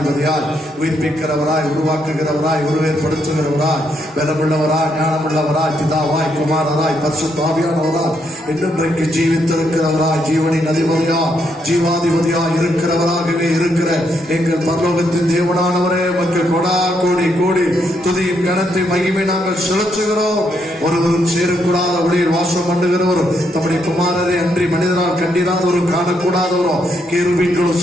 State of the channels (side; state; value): both; normal; correlation 0.76